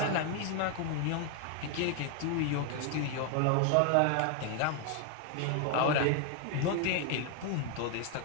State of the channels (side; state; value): both; different; correlation 0.01